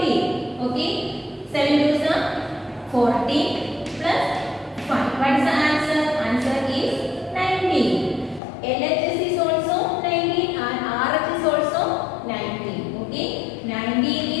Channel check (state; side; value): drops out; right; at 8.4 s